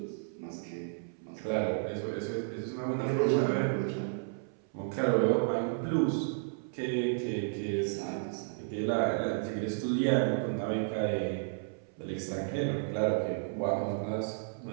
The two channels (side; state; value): left; silent; 56 dB below the other